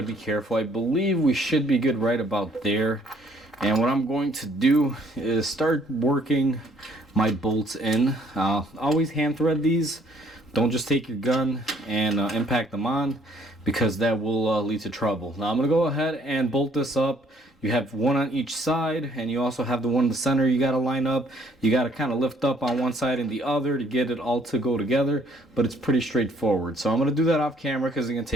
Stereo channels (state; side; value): normal; both; correlation 0.63